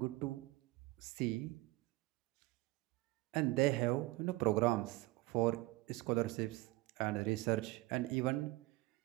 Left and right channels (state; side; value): quieter; left; 21.0 dB